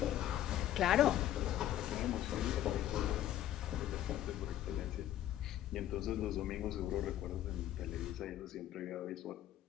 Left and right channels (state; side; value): quieter; right; 12.4 dB